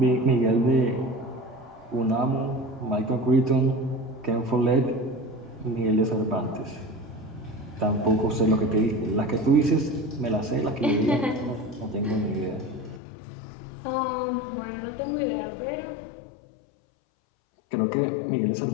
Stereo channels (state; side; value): drops out; right; at 13.0 s